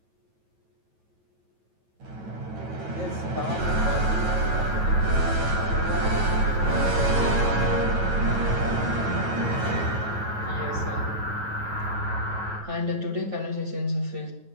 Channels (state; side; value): late; left; 9.2 ms